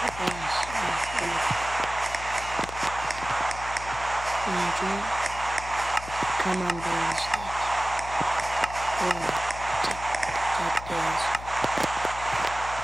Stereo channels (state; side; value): noise; left; hum, 12 dB below the sound